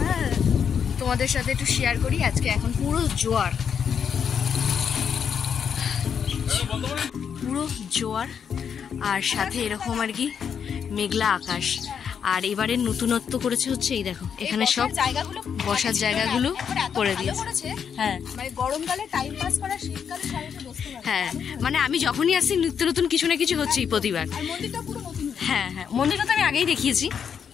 সাথে একটু শেয়ার করি। আজকে এখন পুরো জোয়ার আর সাথে এরকম আর কি মেঘলা আকাশ। আর এবারের নতুনত্ব করেছে হচ্ছে এই দেখো, এখানে সব বসার জায়গাগুলো করে দিয়েছে। হ্যাঁ মানে গরমকালে টাইম পাস করা, শীতকালে সবাই বসতে পারে। হ্যাঁ, মানে আমি যখনই আসি নিত্য নতুন কিছু না কিছু হচ্ছেই প্রতিবার। আর মন্দিরটা পুরো নতুন। হ্যাঁ হ্যাঁ, মন্দিরটা তো আমি আগেই দেখিয়েছি।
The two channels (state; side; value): quieter; right; 7.4 dB